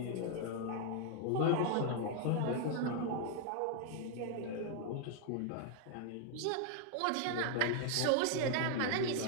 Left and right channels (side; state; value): both; different; correlation 0.00